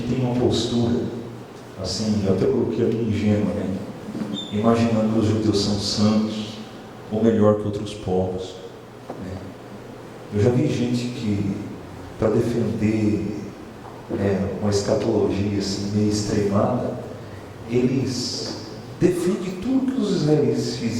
tenha uma postura, assim, eu até coloquei ali ingênua, né? Imaginando que os judeus são santos, ou melhor que outros povos. Né? Eu já vi gente que, para defender uma escatologia assim, meio extremada, eles defendem tudo que os israelenses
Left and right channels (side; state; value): both; identical; correlation 1.00